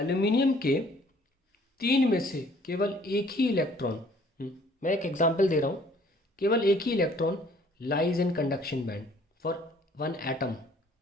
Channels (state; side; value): normal; both; correlation 0.57